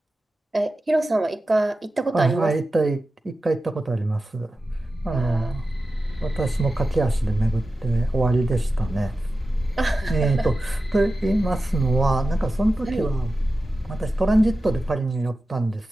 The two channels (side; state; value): both; normal; correlation 0.93